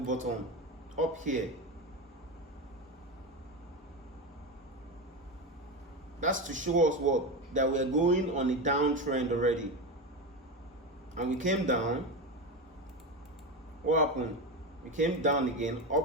bottom up here. That's to show us what? That we are going on a downtrend already. And we came down. What happened? We came down again,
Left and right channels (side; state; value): both; normal; correlation 0.18